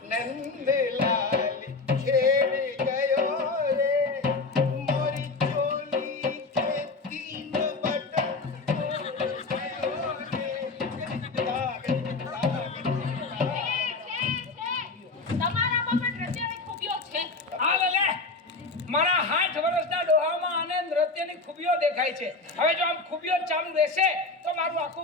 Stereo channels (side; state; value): right; quieter; 3.7 dB